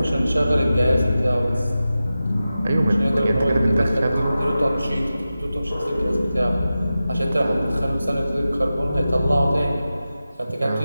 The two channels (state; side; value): inverted; both; correlation -0.94